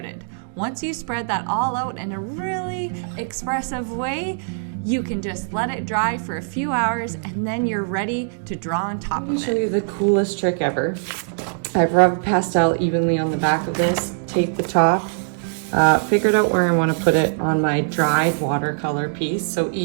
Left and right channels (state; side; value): silent; left; digital silence